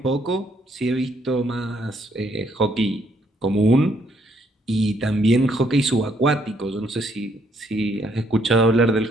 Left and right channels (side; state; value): both; normal; correlation 0.71